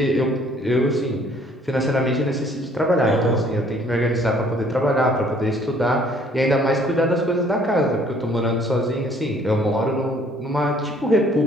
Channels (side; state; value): both; normal; correlation 0.59